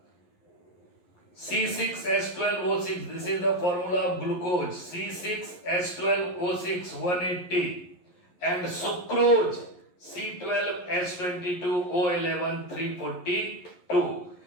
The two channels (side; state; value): right; late; 11 ms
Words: C6H12O6, this is the formula of glucose, C6H12O6 180, and sucrose C12H22O11 342.